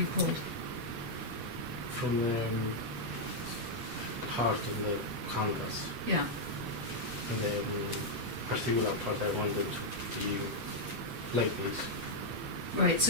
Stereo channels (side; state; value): left; late; 8.3 ms